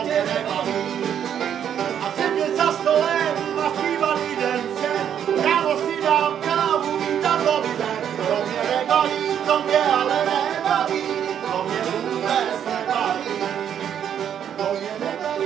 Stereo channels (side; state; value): left; quieter; 9.1 dB